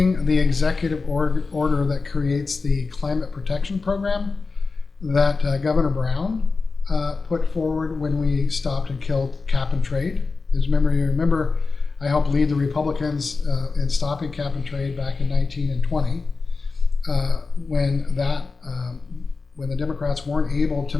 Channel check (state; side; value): quieter; right; 4.2 dB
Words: the executive order that creates the climate protection program that Governor Brown put forward when we stopped and killed cap and trade. You remember I helped lead the Republicans in stopping cap and trade back in 19 and 20. When the Democrats weren't able to